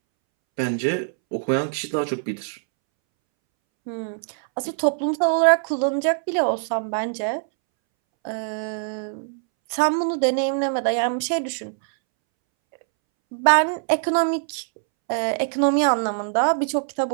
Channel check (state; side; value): silent; left; 63 dB below the other